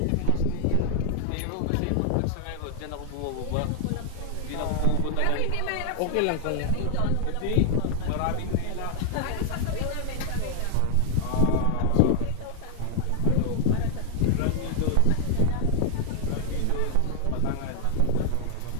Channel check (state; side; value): different; both; correlation 0.00